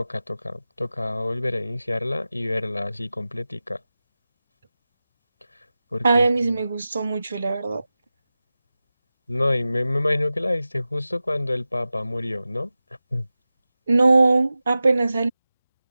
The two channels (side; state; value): both; inverted; correlation -0.95